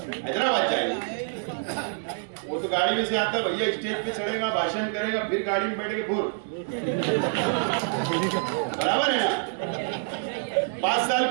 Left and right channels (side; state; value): left; silent; 60 dB below the other